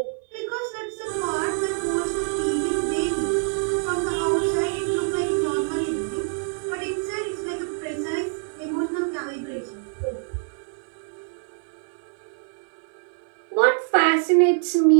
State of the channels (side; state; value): left; silent; 62 dB below the other